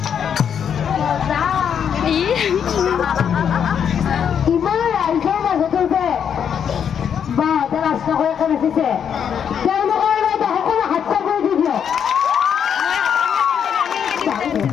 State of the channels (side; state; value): right; quieter; 8.0 dB